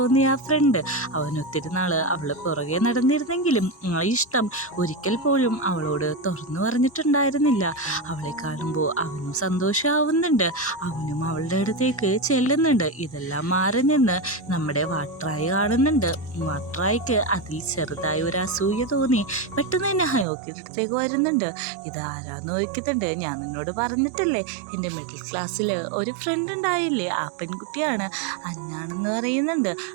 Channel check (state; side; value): drops out; left; at 20.2 s